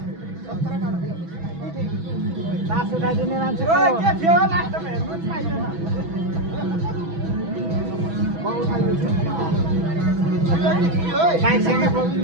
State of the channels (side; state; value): left; late; 6.1 ms